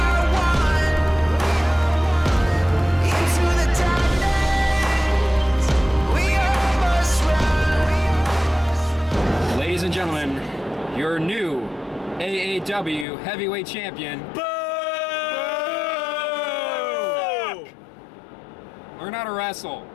one. Into the darkness, we almost run. Ladies and gentlemen, your new AAW heavyweight champion. Learn how to wrestle.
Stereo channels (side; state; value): right; drops out; at 13.1 s